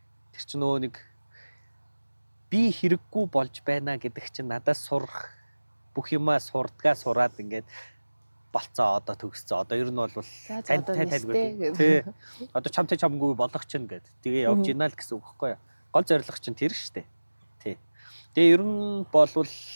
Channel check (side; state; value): both; inverted; correlation -1.00